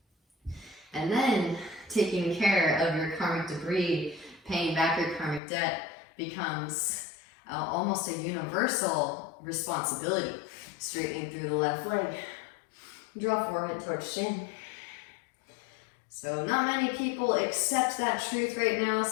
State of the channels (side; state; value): right; drops out; at 5.4 s